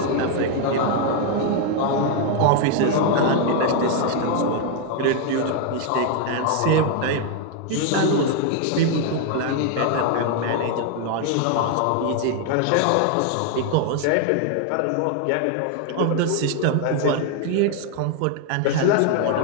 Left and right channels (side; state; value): both; different; correlation 0.01